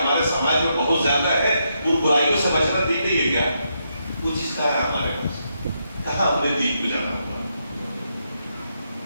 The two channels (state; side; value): inverted; both; correlation -0.80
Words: سماج میں بہت زیادہ ہے، ان برائیوں سے بچنا دین نہیں ہے کیا؟ وہ چیز کہاں ہے ہمارے پاس؟ کہاں ہم نے دین کو جانا ہوگا؟